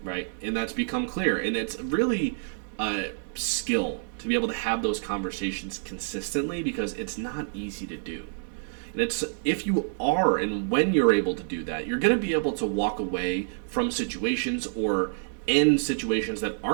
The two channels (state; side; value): silent; left; digital silence